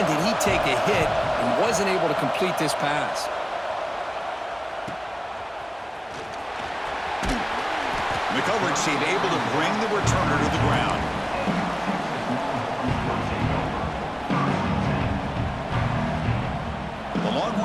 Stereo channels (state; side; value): identical; both; correlation 1.00